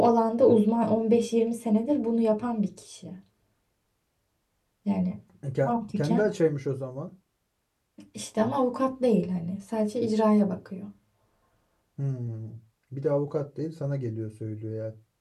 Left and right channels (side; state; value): both; identical; correlation 1.00